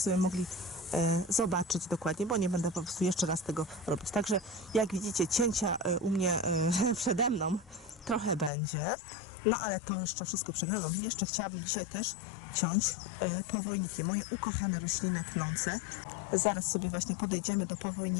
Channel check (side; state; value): right; drops out; at 8.5 s